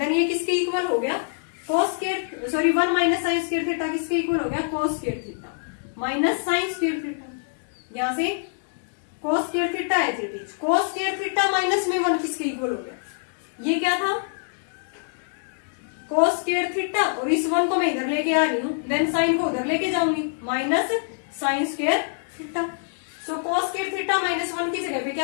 ये किसके इक्वल हो गया cos square, sorry 1 minus sine square theta किसके इक्वल हो गया cos square theta minus sine square theta. यहाँ से cos स्क्वायर थीटा है cos स्क्वायर थीटा माइनस में 1 किसके इक्वल हो गया, ये क्या था cos स्क्वायर थीटा, और इस 1 को मैं इधर लेके आ रही हूँ, देन साइन को उधर लेके जाऊंगी माइनस साइन स्क्वायर थीटा। सो cos स्क्वायर थीटा माइनस 1 की जगह पे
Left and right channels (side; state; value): right; silent; digital silence